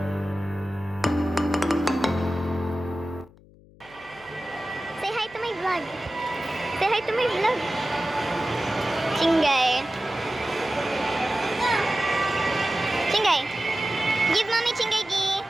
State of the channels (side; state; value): left; noise; hum, 25 dB below the sound